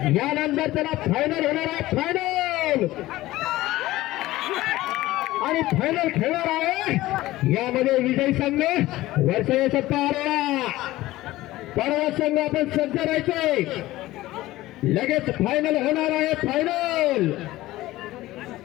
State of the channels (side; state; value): right; quieter; 17.0 dB